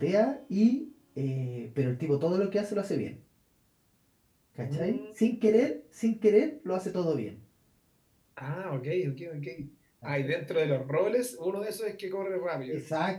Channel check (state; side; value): identical; both; correlation 1.00